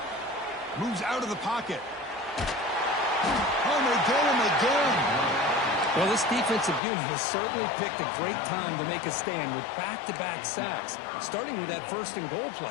Moves out of the pocket. Oh, and they get him again. Well, this defensive unit has certainly picked a great time to make a stand with back-to-back sacks, starting with that first and goal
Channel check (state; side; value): drops out; right; at 6.8 s